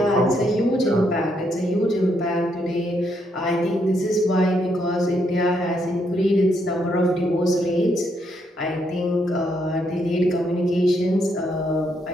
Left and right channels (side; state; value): both; normal; correlation 0.76